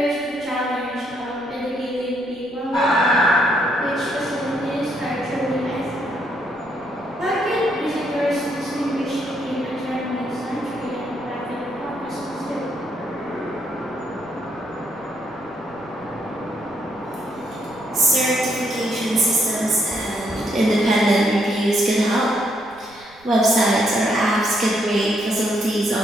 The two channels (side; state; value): right; noise; rumble, 26 dB below the sound